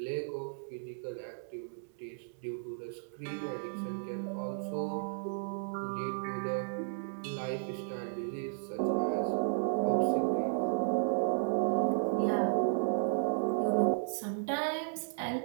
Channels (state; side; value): silent; left; digital silence